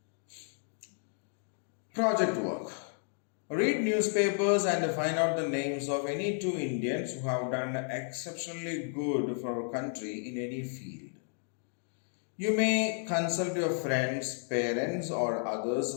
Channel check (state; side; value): silent; right; 56 dB below the other